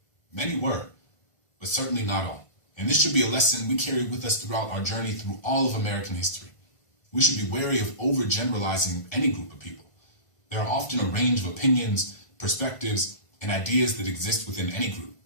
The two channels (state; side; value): late; right; 1.5 ms